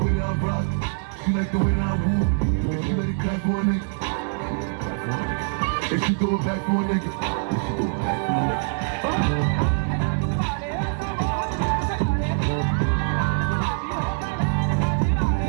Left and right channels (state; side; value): silent; left; 63 dB below the other